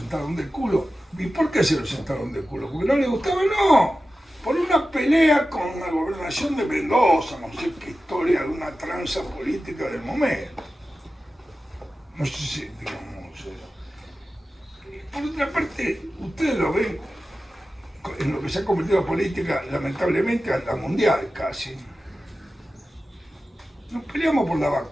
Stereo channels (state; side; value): normal; both; correlation 0.94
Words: de culo. ¿Y por qué se lo sentaron de culo? ¿Porque no les gustaba? No. Por una pelea con la gobernación de Mendoza, no sé qué historia de una tranza política del momento. No sé si, digamos... Por otra parte, ustedes lo ven en lo que se ha convertido la política, lamentablemente, a la mundial casi. Nos peleamos por la